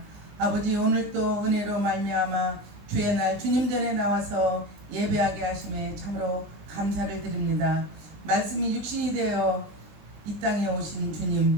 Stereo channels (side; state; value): left; late; 20 ms